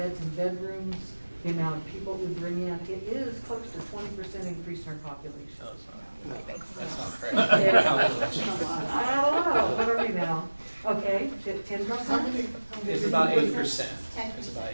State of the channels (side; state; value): both; inverted; correlation -1.00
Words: and bedrooms, the amount of people we bring in, it is close to 20% increase in our population. No, it's not. That's not correct. Calculation. I don't know, what are we now? Okay, 10%? It's about 8%. It's about